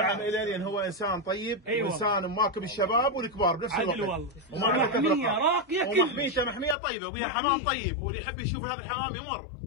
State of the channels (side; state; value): right; drops out; at 6.8 s